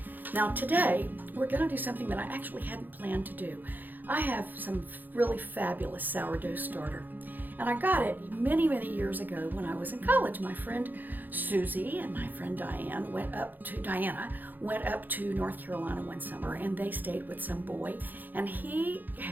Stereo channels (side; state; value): left; late; 0.087 ms